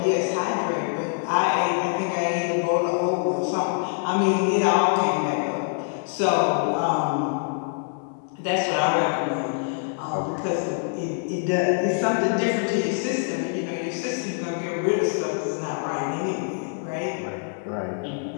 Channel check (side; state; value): right; silent; 62 dB below the other